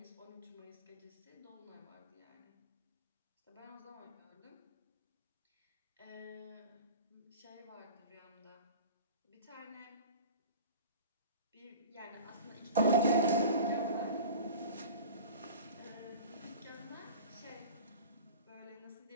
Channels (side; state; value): both; inverted; correlation -0.37